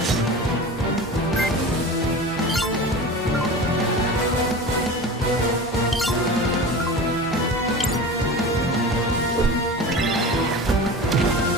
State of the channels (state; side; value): normal; both; correlation 0.32